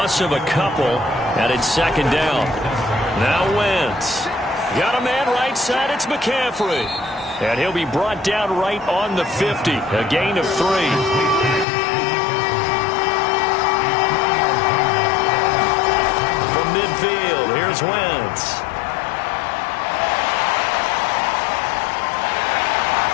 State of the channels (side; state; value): right; drops out; at 11.7 s